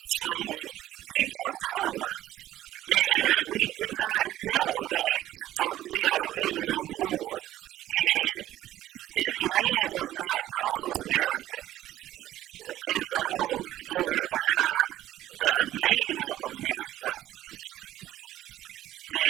on people of color. And we do not know that we are original Moors. And this land was not called America. It's a whole story behind the name of America.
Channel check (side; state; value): left; quieter; 13.8 dB